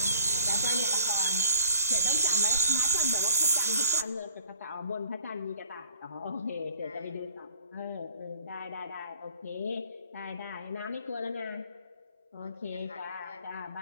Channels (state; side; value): inverted; both; correlation -0.51